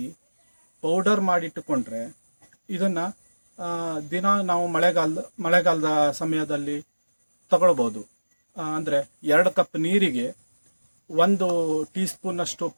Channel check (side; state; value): both; inverted; correlation -1.00